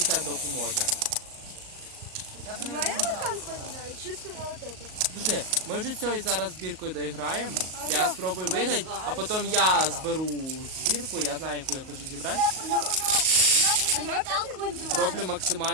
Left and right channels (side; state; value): left; late; 38 ms